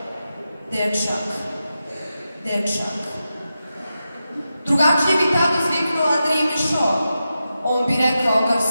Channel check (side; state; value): both; inverted; correlation -0.90